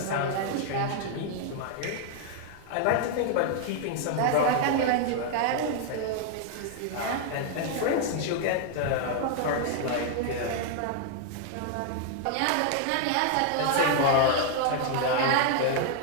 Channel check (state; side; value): different; both; correlation 0.00